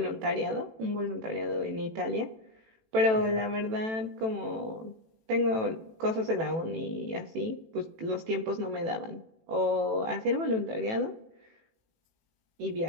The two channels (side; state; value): left; late; 18 ms